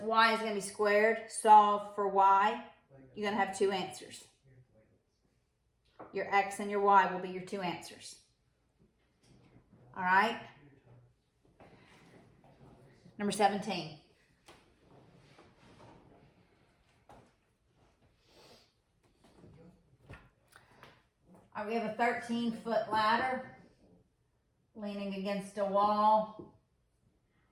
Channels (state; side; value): identical; both; correlation 1.00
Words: Y is going to be squared, solve for Y, you're going to have two answers. Your X and your Y will be your two answers. All right? Number 17. We have a 13-foot ladder leaning against a wall.